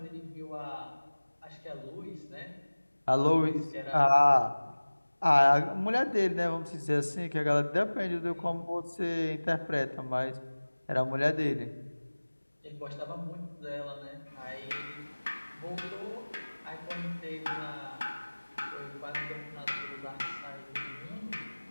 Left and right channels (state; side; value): inverted; both; correlation -1.00